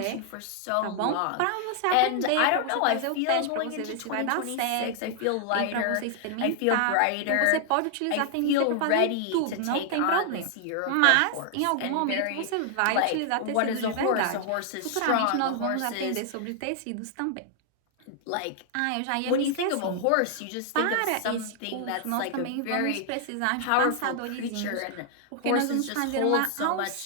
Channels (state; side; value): different; both; correlation 0.00